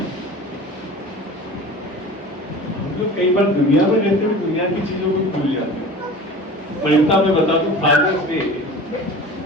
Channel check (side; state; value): both; normal; correlation 0.38